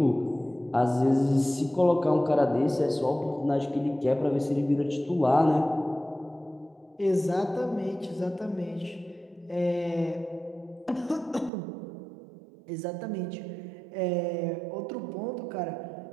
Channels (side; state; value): left; drops out; at 11.5 s